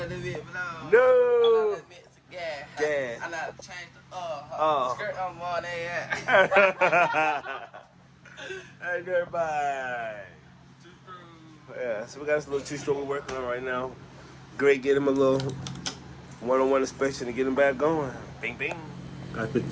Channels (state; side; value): identical; both; correlation 1.00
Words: the bit blow. No. I let the bit gas. Gas. I like to change the Oh. skirt on more than Hey, dirtbike. Yeah, so we got this little 2-stroke we're working on right now. Great, get him a little one-on-one inspection to get him back going. Bing, bing. Got the